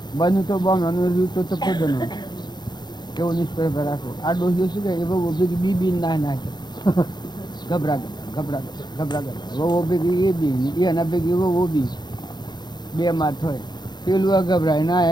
બન્યું તો બોમણાનું રહ્યું તો તપોદનો કેવો નિષ્પર્ધ રાખો. આ ડોહીઓ શું કહે એ બહુ ભેગી બી ના નાખે, ગભરા વહુ ભેગી એ બી એના ભેગી વહુ બી બે માથ હોય. પેલું ગભરાય ના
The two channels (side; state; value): right; late; 0.21 ms